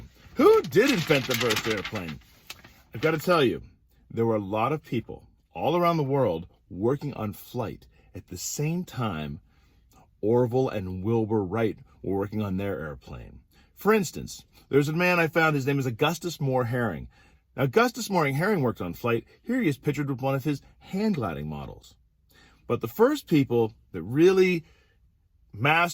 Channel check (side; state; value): both; identical; correlation 1.00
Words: Who did invent the first airplane? I've got to tell you, there were a lot of people all around the world working on flight at the same time Orville and Wilbur Wright were working on their airplane. For instance, there's a man I found, his name is Augustus Moore Herring. Now, Augustus Moore Herring worked on flight. Here he is pictured with one of his hand gliding models. But the first people that really